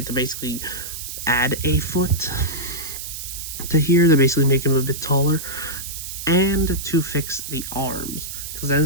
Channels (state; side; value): noise; right; hiss, 8 dB below the sound